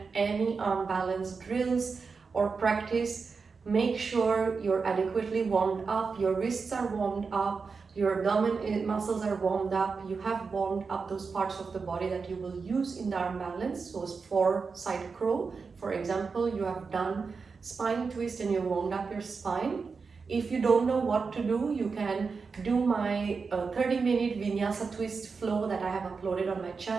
any arm balance drills or practice, make sure you're adequately warmed up, your wrists are warmed up, your abdomen muscles are warmed up, you have warmed up those parts of the body that you will use in the arm balance. So for side crow, for example, you have done spine twist and you warmed up your spine. If you don't know what to do, you can do my 30-minute vinyasa twist flow that I have uploaded on my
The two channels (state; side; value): quieter; left; 4.9 dB